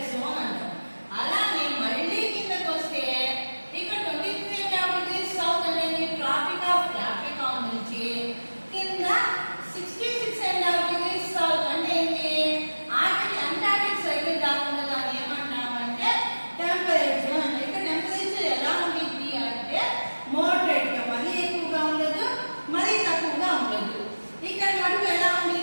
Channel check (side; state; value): both; inverted; correlation -1.00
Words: జోన్ అంటాం. అలాగే మళ్ళీ కిందకు వస్తే ఇక్కడ 23.5 degrees సౌత్ అనేది ట్రాపిక్ ఆఫ్ క్యాప్రికాన్ నుంచి కింద 66.5 degrees సౌత్ అంటే ఏంటి? అంటార్టిక్ సర్కిల్ దాకా దాన్ని ఏమంటామంటే టెంపరేట్ జోన్ అంటే. ఇక్కడ టెంపరేచర్ ఎలా ఉంటుంది అంటే మోడరేట్ గా, మరీ ఎక్కువగా ఉండదు, మరీ తక్కువగా ఉండదు. ఇక్కడ మటుకు ఎలా